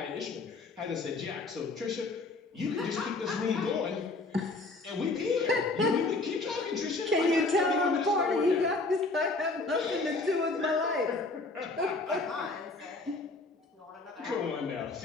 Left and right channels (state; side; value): quieter; right; 3.4 dB